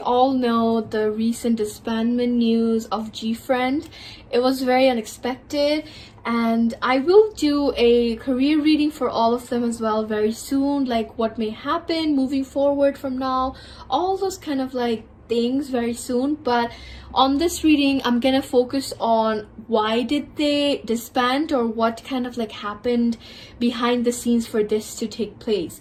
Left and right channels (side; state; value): both; identical; correlation 1.00